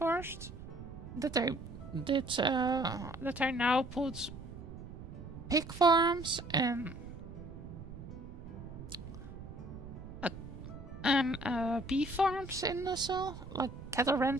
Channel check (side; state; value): right; noise; rumble, 12 dB below the sound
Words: that I now put pig farms and bee farms in also, like cattle